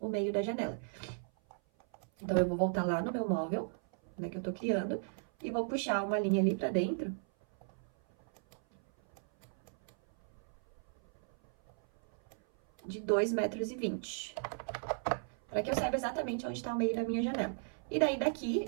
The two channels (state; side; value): silent; left; 54 dB below the other